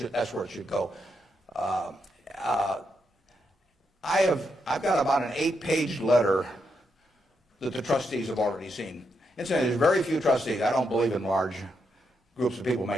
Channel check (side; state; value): both; normal; correlation 0.81